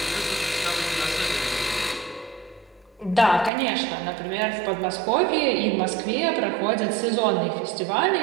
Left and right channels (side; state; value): left; drops out; at 3.5 s